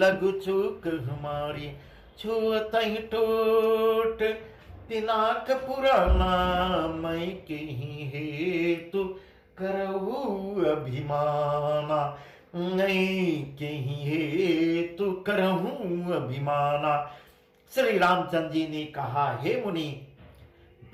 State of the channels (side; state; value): both; identical; correlation 1.00